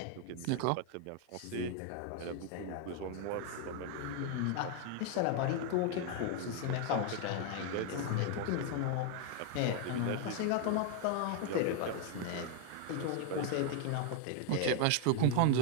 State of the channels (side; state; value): both; different; correlation 0.00